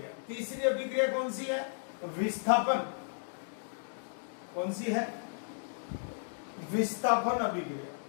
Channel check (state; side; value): silent; right; digital silence